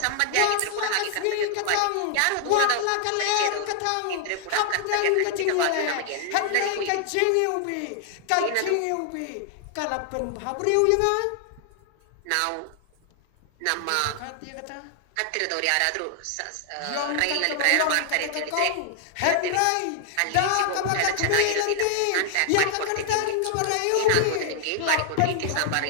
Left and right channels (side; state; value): both; different; correlation 0.00